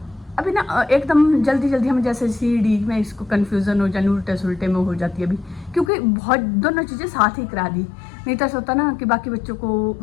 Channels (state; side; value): drops out; right; at 5.9 s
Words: अभी ना एकदम जल्दी हम जैसे CD में इसको कन्फ्यूज़न हो जाए, उल्टे सुलटे में हो जाती है अभी, क्योंकि बहुत दोनों चीज़ें साथ ही करा दी। नहीं तो ऐसा होता ना कि बाकी बच्चों को